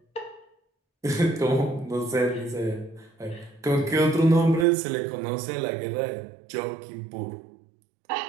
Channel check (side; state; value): left; drops out; at 4.7 s